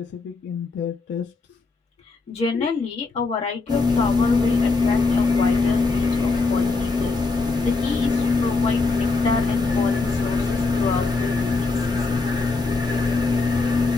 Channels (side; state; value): right; quieter; 3.9 dB